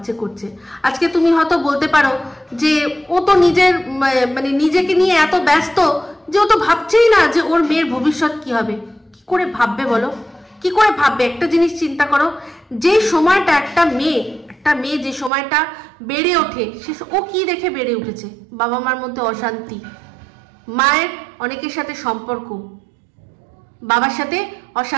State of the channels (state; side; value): drops out; left; at 15.3 s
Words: করছে। আজকে তুমি হয়তো বলতে পারো যে ও তো নিজেকে নিয়ে এত ব্যস্ত যে ও তো ভাবছেই না যে ওর মেয়ের ভবিষ্যৎ কি হবে। কি করে ভাববে বলো, কি করে ভাববে? একটা জিনিস চিন্তা করো, যে সময়টা একটা মেয়ে যে সময়টা বেড়ে ওঠে, ও কি দেখে বেড়ে উঠেছে? বাবা মার মধ্যে অশান্তি, মায়ের অনেকের সাথে সম্পর্ক, বাবার সাথে